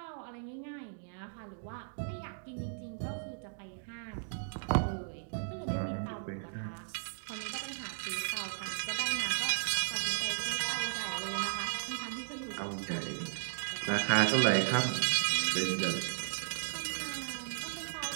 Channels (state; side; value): silent; left; digital silence